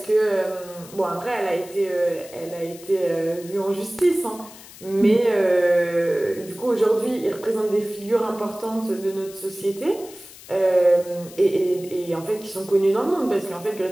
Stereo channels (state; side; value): noise; left; hiss, 19 dB below the sound